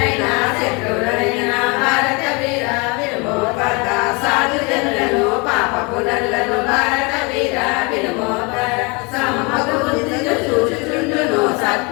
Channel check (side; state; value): right; quieter; 29.3 dB